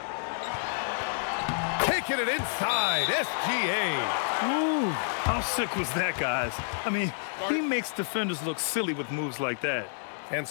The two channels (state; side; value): silent; right; 59 dB below the other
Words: Taking it inside, SGA. Ooh, how sick was that, guys? I mean, he makes defenders look silly with moves like that. And